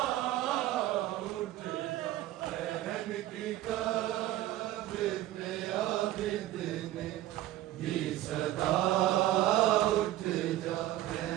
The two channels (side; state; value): left; quieter; 14.6 dB